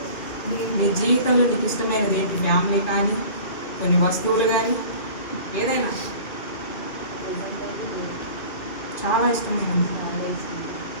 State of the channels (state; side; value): late; right; 2.2 ms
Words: నీ జీవితంలో నీకు ఇష్టమైనది ఏంటి? ఫ్యామిలీ కానీ, కొన్ని వస్తువులు కానీ, ఏదైనా చాలా ఇష్టమైనది.